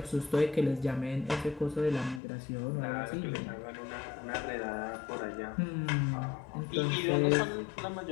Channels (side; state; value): right; drops out; at 2.2 s